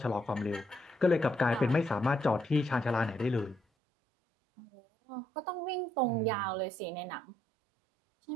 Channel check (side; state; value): left; drops out; at 3.6 s